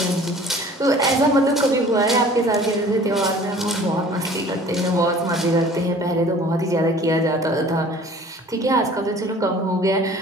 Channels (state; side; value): normal; both; correlation 0.48